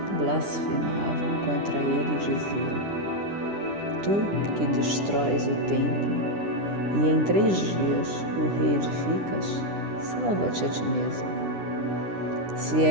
contra ele e diziam: Tu que destróis o templo e em 3 dias o reedificas, salva-te a ti mesmo. Se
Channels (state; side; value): late; left; 10 ms